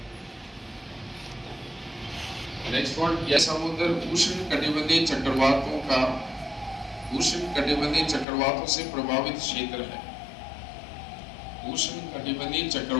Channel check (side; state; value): right; drops out; at 8.2 s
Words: नेक्स्ट पॉइंट, यह समुद्र उष्ण कटिबंधीय चक्रवातों से प्रभावित क्षेत्र है। उष्ण कटिबंधीय